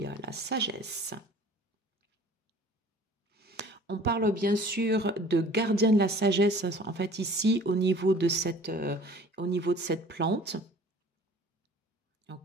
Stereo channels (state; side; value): normal; both; correlation 0.48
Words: la sagesse. On parle bien sûr de gardien de la sagesse, en fait ici au niveau de cette plante.